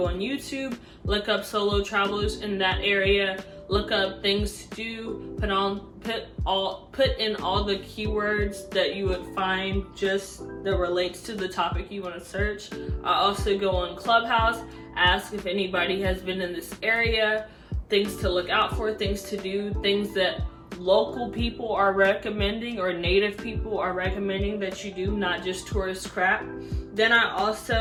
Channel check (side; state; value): both; identical; correlation 1.00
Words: on YouTube, look up solo travelers in that area, look up things to do, put in all the keywords that you would find just that relates to the topic you want to search. I also go on Clubhouse, ask if anybody has been in this area, things to look out for, things to do, things that local people are recommending or native people are recommending that you do, not just tourist crap. Then I